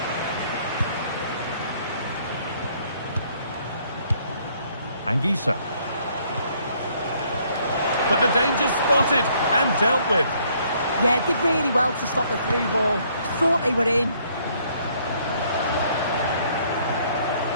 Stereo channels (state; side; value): inverted; both; correlation -0.65